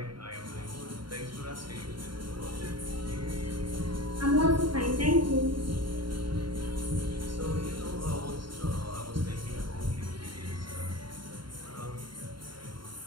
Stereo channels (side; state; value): left; late; 0.72 ms